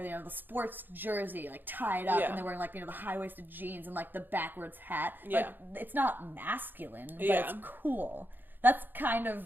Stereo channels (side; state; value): left; late; 0.092 ms